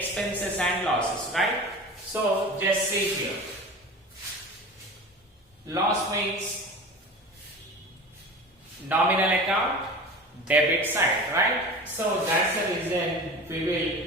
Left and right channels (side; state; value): both; normal; correlation 0.35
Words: and losses, right? So just see here. Loss means nominal account, debit side, right? So that's the reason we will